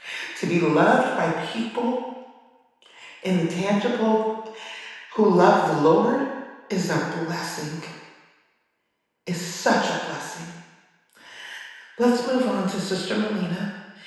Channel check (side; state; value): both; identical; correlation 1.00